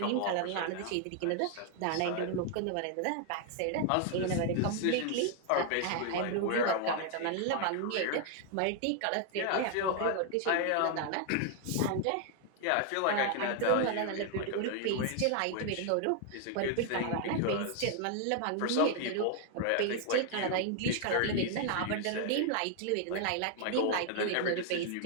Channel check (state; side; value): different; both; correlation 0.00